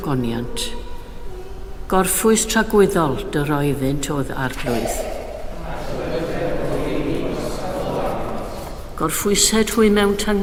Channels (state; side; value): identical; both; correlation 1.00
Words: Gorffwys tragwyddol dy roeddynt oedd arglwydd. Gorffwysed hwy mewn